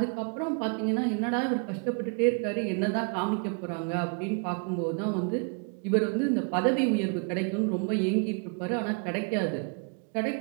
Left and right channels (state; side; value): quieter; left; 36.9 dB